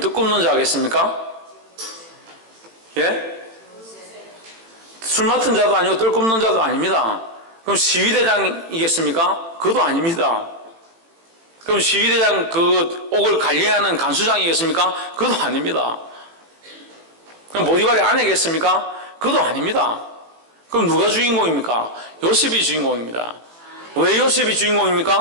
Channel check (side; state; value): left; late; 18 ms